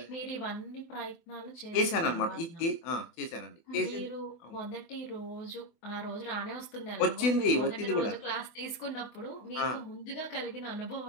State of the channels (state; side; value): late; right; 24 ms